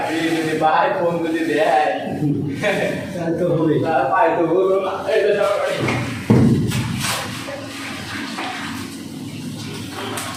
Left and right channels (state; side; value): identical; both; correlation 1.00